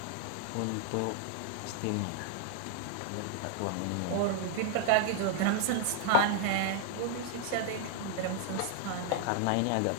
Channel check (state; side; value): different; both; correlation 0.00